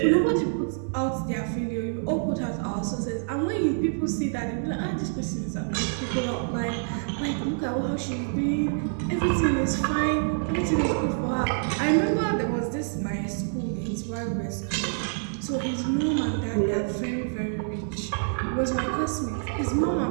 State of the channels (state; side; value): silent; left; digital silence